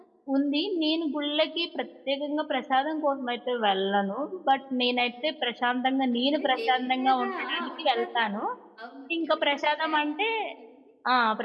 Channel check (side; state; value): both; identical; correlation 1.00